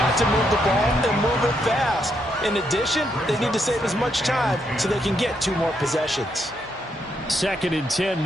to move the ball and move it fast. In addition, they need to save as much time so they can get 2 more possessions. 2nd and 10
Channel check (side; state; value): both; normal; correlation 0.77